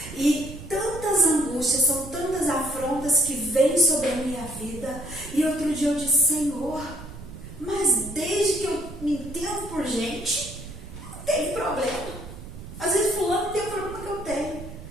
E tantas angústias, são tantas afrontas que vêm sobre a minha vida. E outro dia eu disse, Senhor, mas desde que eu me entendo por gente, não tem problema. Às vezes fulano tem o problema que eu tenho.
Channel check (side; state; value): right; noise; rumble, 13 dB below the sound